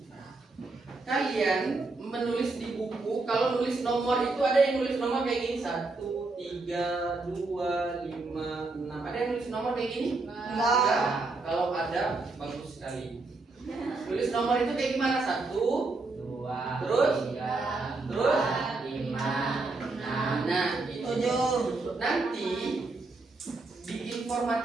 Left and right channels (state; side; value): quieter; left; 3.5 dB